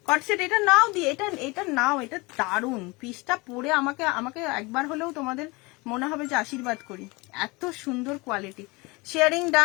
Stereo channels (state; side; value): quieter; right; 25.1 dB